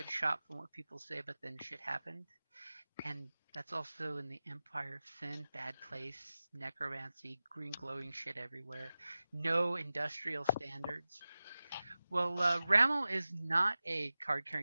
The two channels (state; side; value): inverted; both; correlation -0.95